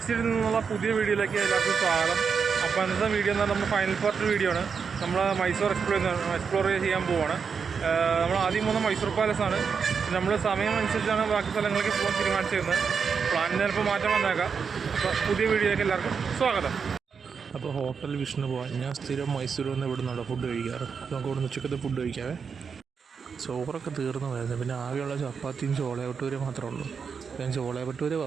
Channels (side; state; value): left; quieter; 6.0 dB